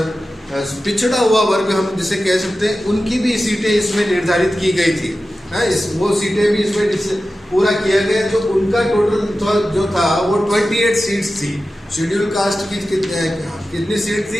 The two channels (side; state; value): both; normal; correlation 0.94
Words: पिछड़ा हुआ वर्ग हम जिसे कह सकते हैं, उनकी भी सीटें इसमें निर्धारित की गई थी। वो सीटें भी इसमें पूरा किया गया। जो उनका टोटल जो था वो 28 सीट्स थी। शेड्यूल कास्ट की कितनी सीट